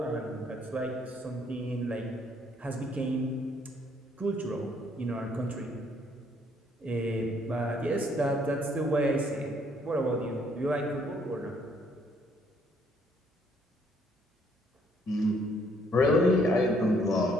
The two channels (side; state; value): both; normal; correlation 0.66